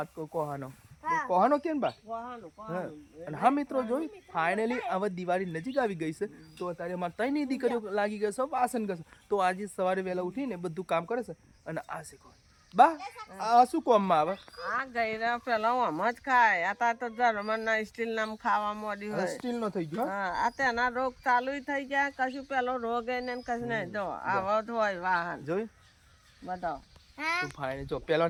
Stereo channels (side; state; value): both; identical; correlation 1.00